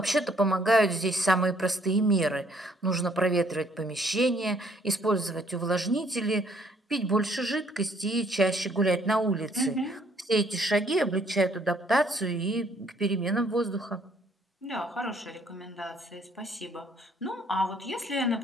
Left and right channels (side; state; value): both; normal; correlation 0.64